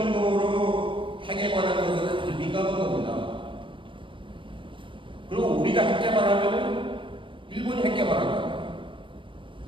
핵에 관한 것은 아주 민감한 겁니다. 그리고 우리가 핵 개발하면 일본이 핵 개발한다.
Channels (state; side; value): late; left; 0.25 ms